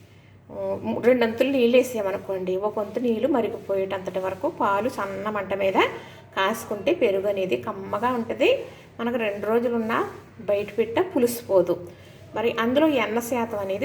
2 అంతులు నీళ్ళు వేసామనుకోండి, 1 వంతు నీళ్ళు మరిగిపోయేటంతటి వరకు పాలు సన్న మంట మీద కాసుకుంటే పెరుగు అనేది కమ్మగా ఉంటుంది. మనకు 2 రోజులున్నా బయట పెట్ట పులిసిపోదు. మరి అందులో ఎన్న శాతం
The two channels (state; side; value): identical; both; correlation 1.00